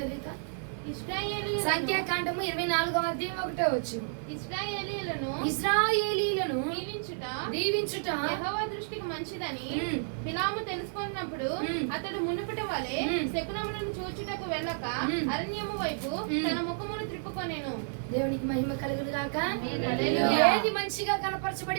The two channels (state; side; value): silent; left; 57 dB below the other